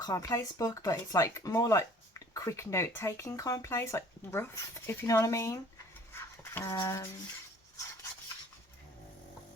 book, but it's like more like quick note taking Commonplace, like rough, if you know what I mean.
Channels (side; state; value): both; normal; correlation 0.52